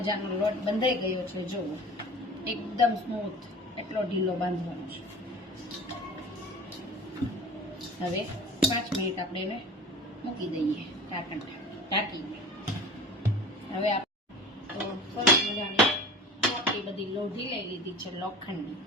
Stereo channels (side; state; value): both; normal; correlation 0.39